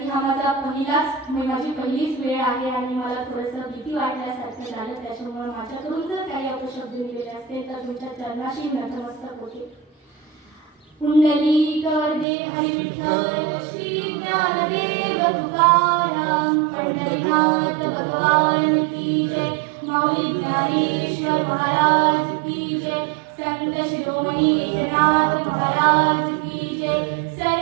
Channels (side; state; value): left; drops out; at 12.2 s